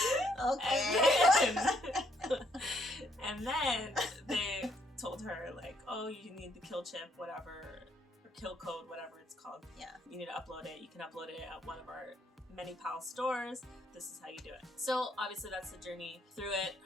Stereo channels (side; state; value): both; normal; correlation 0.71